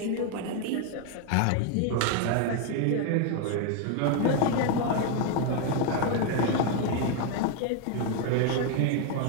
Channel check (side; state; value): both; different; correlation 0.01